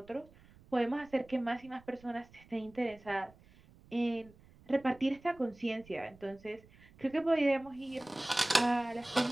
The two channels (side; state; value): right; noise; rumble, 25 dB below the sound